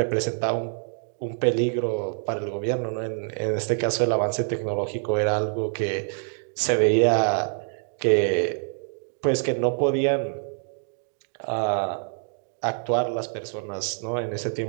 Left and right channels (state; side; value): silent; left; digital silence